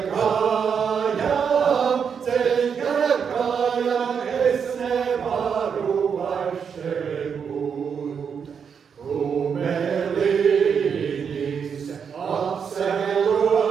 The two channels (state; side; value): quieter; left; 6.8 dB